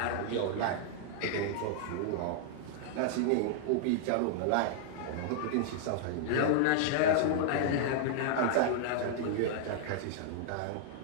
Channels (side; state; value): both; different; correlation -0.01